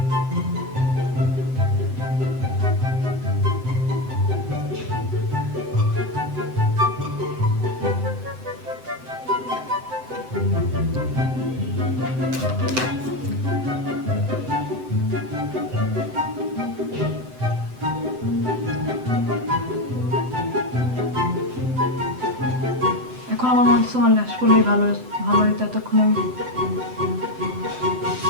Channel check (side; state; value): left; late; 7.8 ms